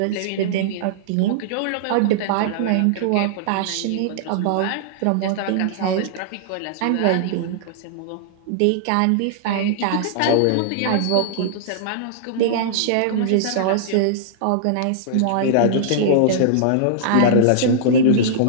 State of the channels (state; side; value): different; both; correlation -0.02